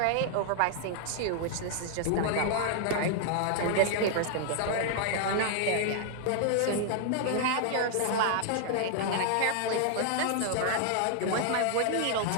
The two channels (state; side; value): different; both; correlation 0.00